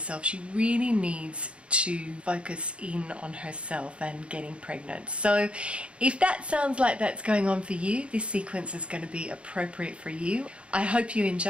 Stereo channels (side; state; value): left; late; 0.059 ms